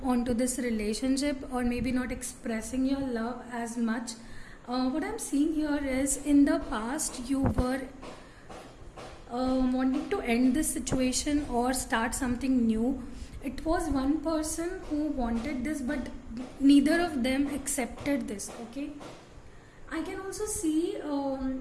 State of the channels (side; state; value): both; identical; correlation 1.00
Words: onto this relationship, or maybe not expressing your love as much. What I'm seeing here is, in the past you were wanting to end this situation or start something new. It was one person who wanted this, but neither of them accepted this, okay. I can also see